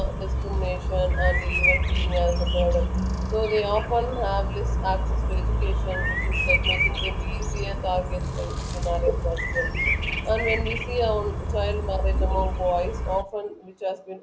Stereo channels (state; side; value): identical; both; correlation 1.00